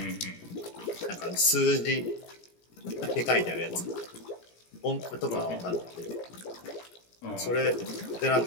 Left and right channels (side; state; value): right; late; 17 ms